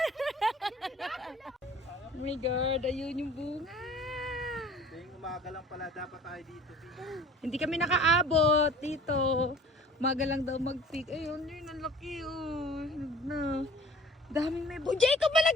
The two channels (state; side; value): normal; both; correlation 0.48